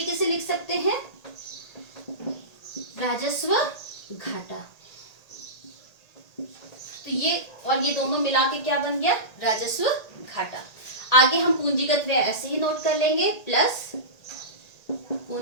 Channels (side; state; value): right; late; 1.8 ms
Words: से लिख सकते हैं, राजस्व घाटा। तो ये और ये दोनों मिला के क्या बन गया, राजस्व घाटा। आगे हम पूंजीगत व्यय ऐसे ही नोट कर लेंगे, प्लस